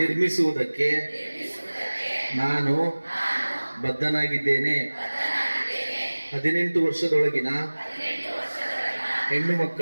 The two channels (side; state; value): both; inverted; correlation -1.00